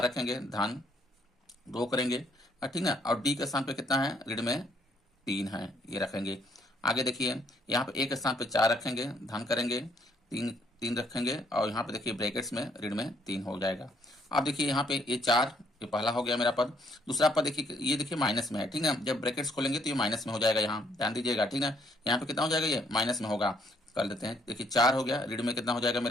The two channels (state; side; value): normal; both; correlation 0.68